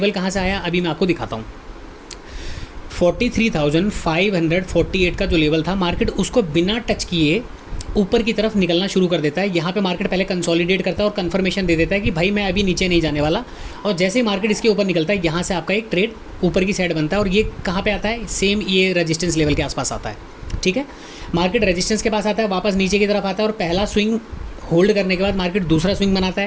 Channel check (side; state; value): both; identical; correlation 1.00